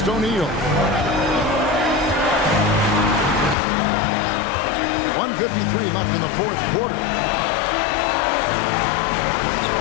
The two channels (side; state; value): right; drops out; at 3.6 s